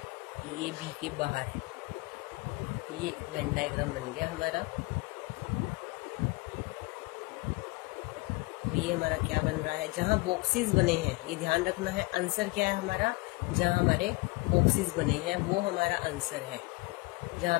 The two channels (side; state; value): right; quieter; 24.1 dB